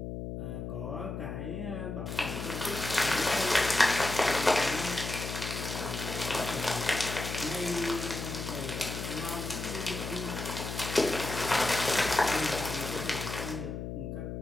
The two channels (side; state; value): left; noise; hum, 6 dB below the sound